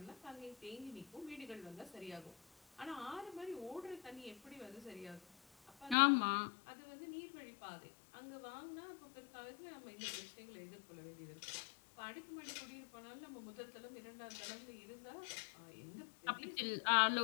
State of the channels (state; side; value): drops out; right; at 6.0 s